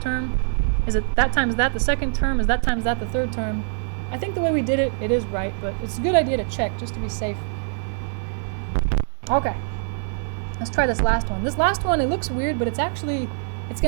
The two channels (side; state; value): left; silent; digital silence